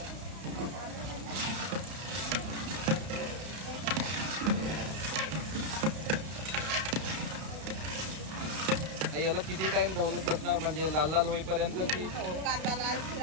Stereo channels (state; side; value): late; left; 32 ms